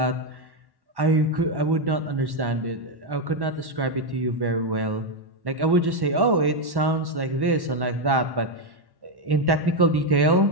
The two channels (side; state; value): left; late; 1.1 ms